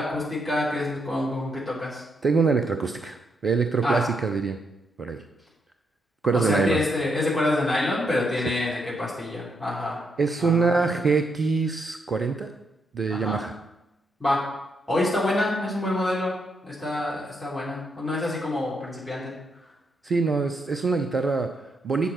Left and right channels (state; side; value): normal; both; correlation 0.78